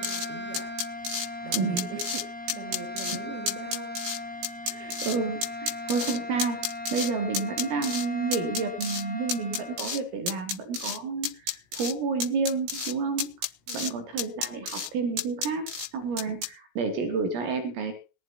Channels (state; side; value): late; left; 17 ms